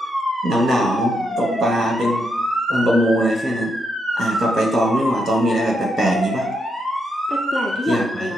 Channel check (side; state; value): both; normal; correlation 0.80